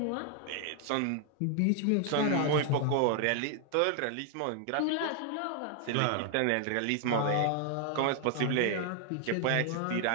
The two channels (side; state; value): both; different; correlation 0.00